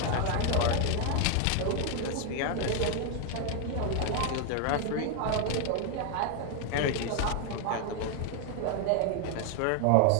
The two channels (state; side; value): different; both; correlation 0.01